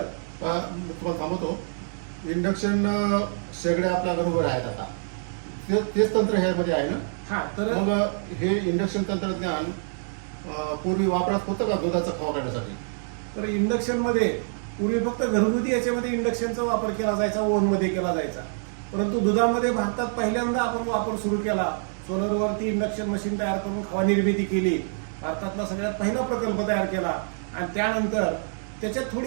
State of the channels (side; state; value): left; silent; digital silence